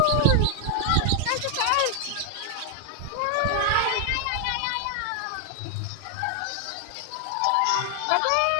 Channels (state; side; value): different; both; correlation 0.00